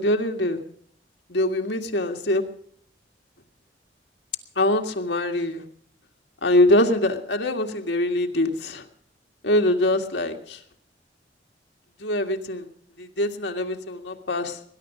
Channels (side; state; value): both; normal; correlation 0.17